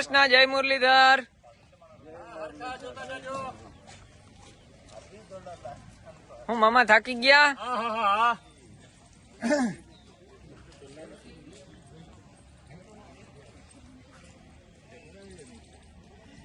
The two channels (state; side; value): identical; both; correlation 1.00